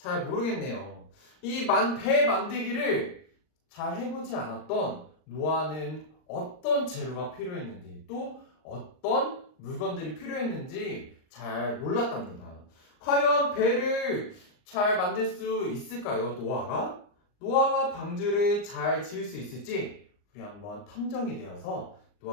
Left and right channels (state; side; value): late; right; 39 ms